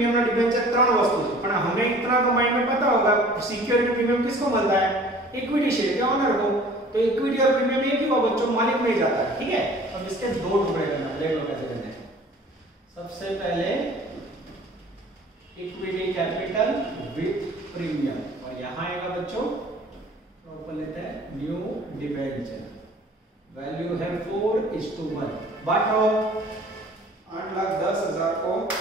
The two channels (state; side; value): normal; both; correlation 0.49